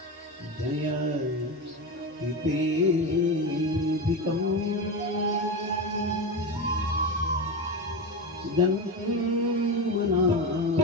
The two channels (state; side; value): normal; both; correlation 0.19